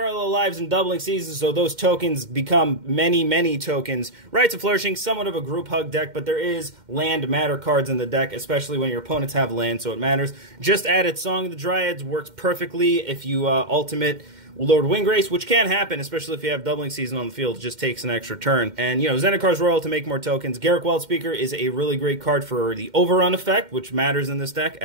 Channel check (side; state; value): left; late; 2.1 ms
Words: Lives and Doubling Seasons, so those tokens become many, many tokens. Rites of Flourishing, somewhat of a group hug deck, but there is land matter cards in the deck, especially when your opponents have land, so it matters. Just added Song of the Dryads, works perfectly if you ultimate Lord Windgrace, which can happen, especially if you have Doubling Season on the field. It just takes an extra turn. And, Zendikar Royal to make more tokens. Garruk Wildspeaker is a really great card for the Overrun effect, which matters in this deck,